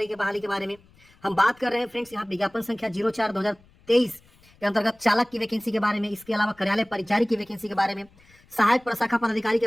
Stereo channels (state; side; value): noise; left; rumble, 30 dB below the sound